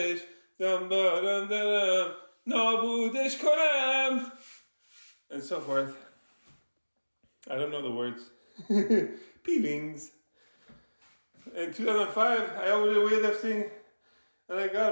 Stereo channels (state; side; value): inverted; both; correlation -1.00